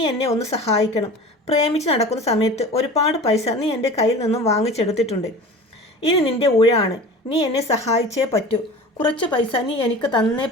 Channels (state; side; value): normal; both; correlation 0.37